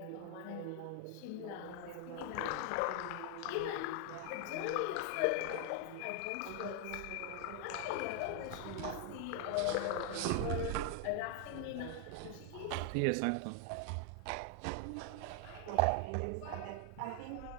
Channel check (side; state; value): both; different; correlation 0.00